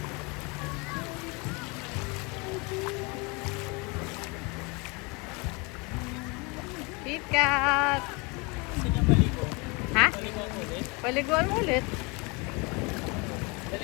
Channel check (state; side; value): quieter; right; 28.9 dB